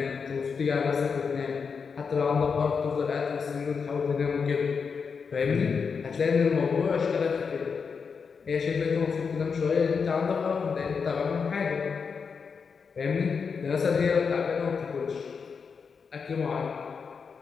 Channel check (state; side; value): quieter; right; 5.7 dB